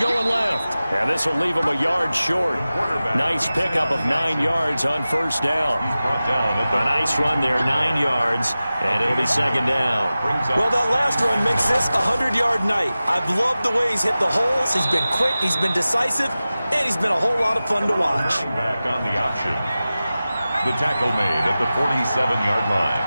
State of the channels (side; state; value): both; inverted; correlation -0.95